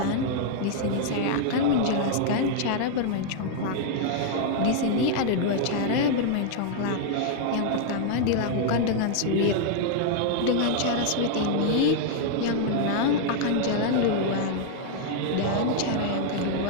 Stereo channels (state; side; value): different; both; correlation 0.00